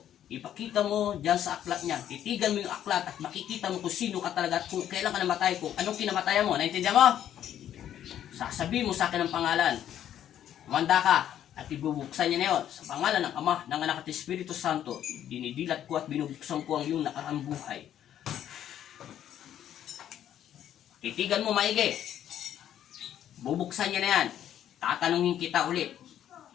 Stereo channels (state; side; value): quieter; right; 10.7 dB